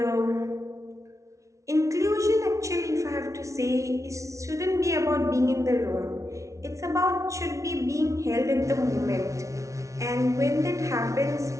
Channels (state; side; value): late; left; 0.15 ms